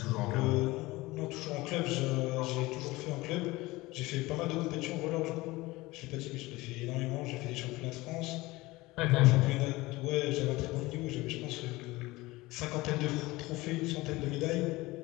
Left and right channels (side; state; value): right; quieter; 20.4 dB